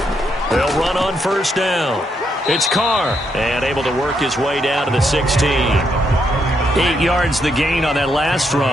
They'll run on first down. It's Carr, and able to work his way down to the 16. 8 yards the gain on that last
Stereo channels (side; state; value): both; normal; correlation 0.77